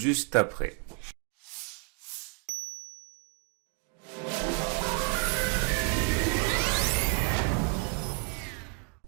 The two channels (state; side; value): quieter; left; 32.4 dB